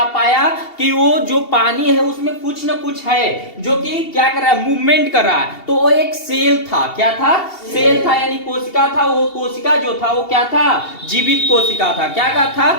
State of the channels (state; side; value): late; right; 2.7 ms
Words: पाया कि वो जो पानी है उसमें कुछ न कुछ है जो कि क्या कर रहा है, मूवमेंट कर रहा है। तो वो एक सेल था। क्या था? सेल था, यानी कोशिका था। वो कोशिका जो था वो क्या था? जीवित कोशिका था। क्या था?